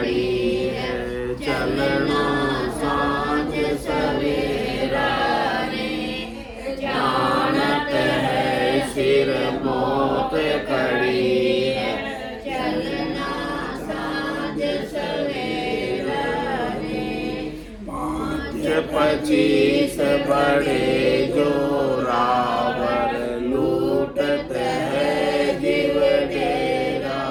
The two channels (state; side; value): identical; both; correlation 1.00